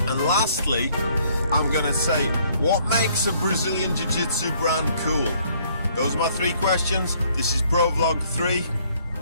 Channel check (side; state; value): both; inverted; correlation -0.64